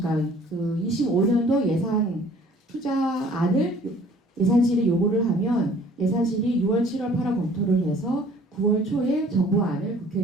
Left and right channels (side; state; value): both; normal; correlation 0.53